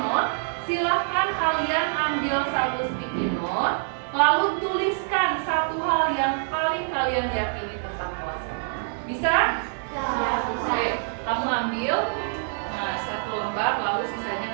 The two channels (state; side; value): silent; left; digital silence